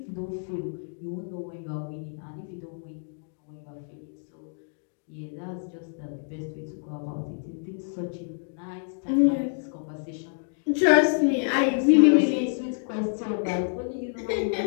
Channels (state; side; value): silent; right; digital silence